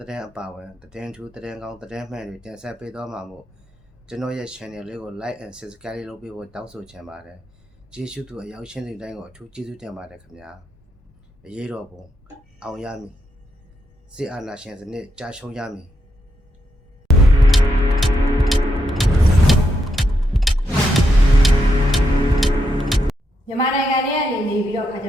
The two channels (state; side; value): normal; both; correlation 0.82